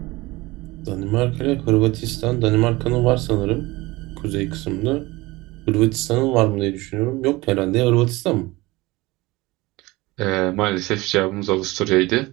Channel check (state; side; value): quieter; left; 21.1 dB